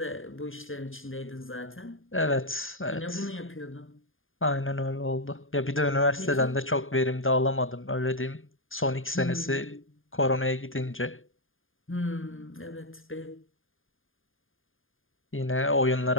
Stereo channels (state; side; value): late; right; 0.59 ms